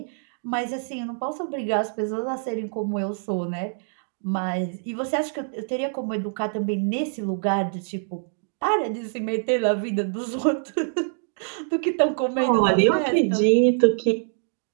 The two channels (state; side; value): silent; left; digital silence